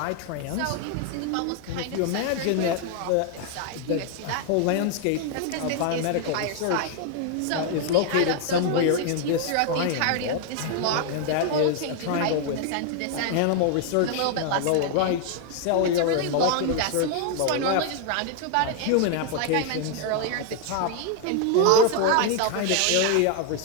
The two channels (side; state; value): both; different; correlation 0.00